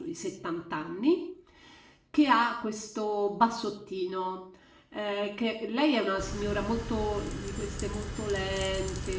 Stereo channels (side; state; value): both; identical; correlation 1.00